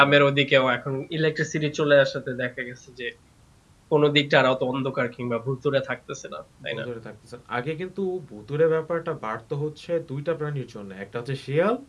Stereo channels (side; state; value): both; identical; correlation 1.00